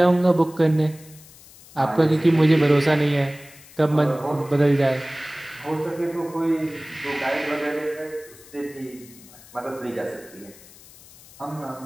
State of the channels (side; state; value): left; noise; hiss, 22 dB below the sound